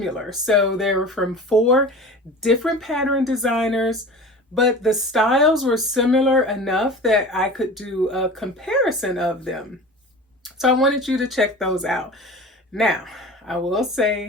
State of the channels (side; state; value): both; normal; correlation 0.36